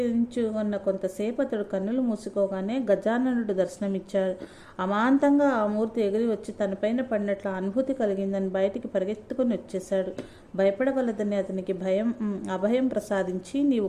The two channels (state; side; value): identical; both; correlation 1.00